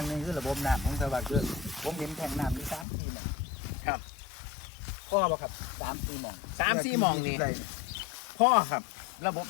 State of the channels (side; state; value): right; drops out; at 2.9 s